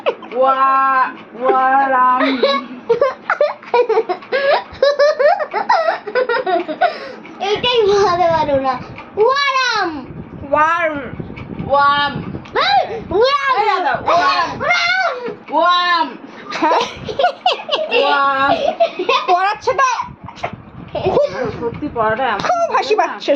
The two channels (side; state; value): both; identical; correlation 1.00